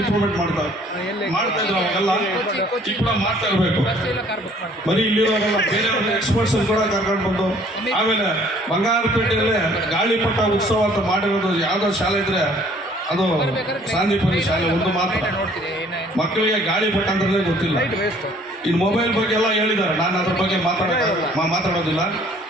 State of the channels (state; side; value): normal; both; correlation 0.58